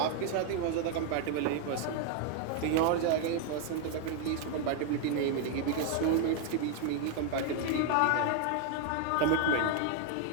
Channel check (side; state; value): both; different; correlation 0.00